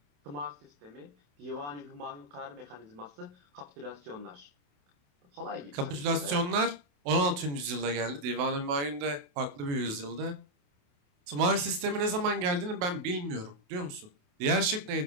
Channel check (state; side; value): late; left; 28 ms